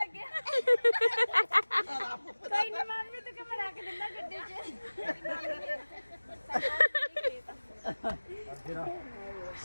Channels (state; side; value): inverted; both; correlation -1.00